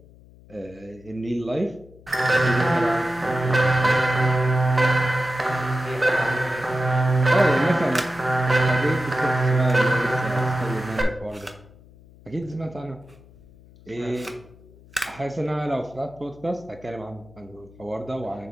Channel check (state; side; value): noise; left; hum, 24 dB below the sound